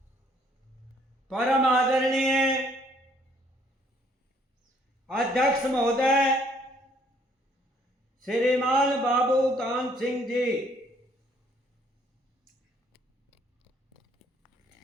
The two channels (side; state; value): both; normal; correlation 0.64